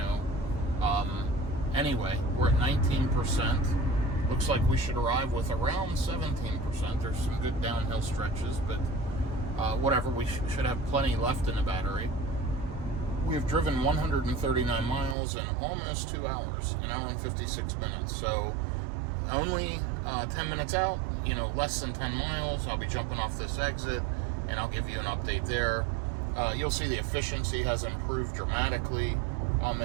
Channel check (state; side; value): drops out; left; at 15.2 s